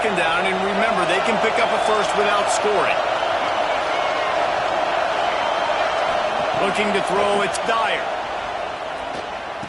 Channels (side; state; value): both; identical; correlation 1.00